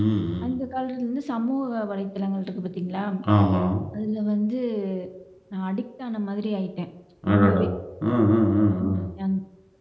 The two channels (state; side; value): identical; both; correlation 1.00